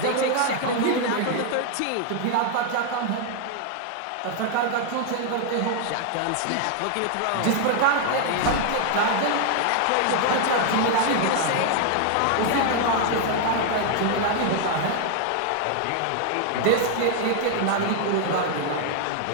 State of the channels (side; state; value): both; different; correlation 0.00